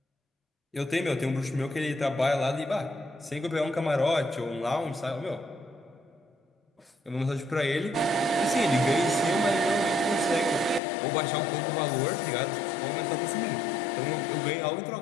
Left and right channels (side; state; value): right; drops out; at 10.8 s